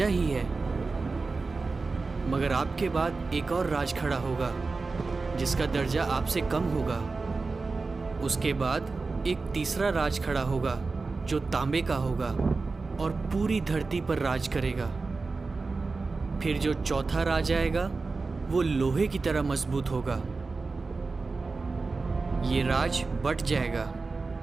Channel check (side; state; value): left; quieter; 4.0 dB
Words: ही है, मगर आपके बाद एक और राज खड़ा होगा जिसका दर्जा आपसे कम होगा। उसके बाद एक तीसरा राज खड़ा होगा जो तांबे का होगा और पूरी धरती पर राज करेगा। फिर जो चौथा राज आएगा वो लोहे की तरह मजबूत होगा। ये राज बट जाएगा।